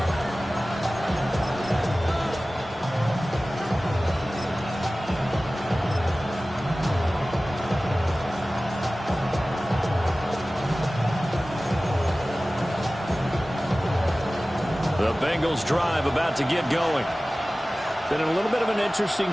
The Bengals drive about to get going. Been a little bit of an interesting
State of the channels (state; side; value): normal; both; correlation 0.97